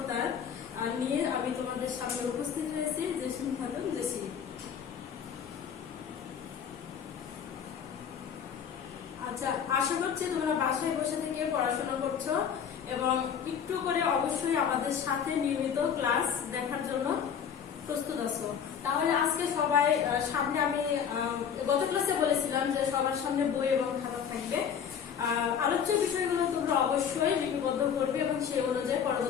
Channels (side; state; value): right; quieter; 7.8 dB